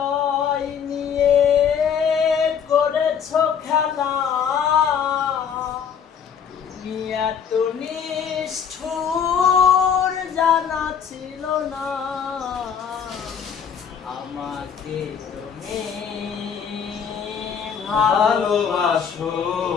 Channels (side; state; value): right; quieter; 7.4 dB